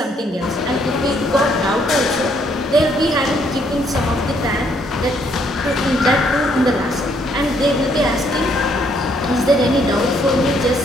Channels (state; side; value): normal; both; correlation 0.69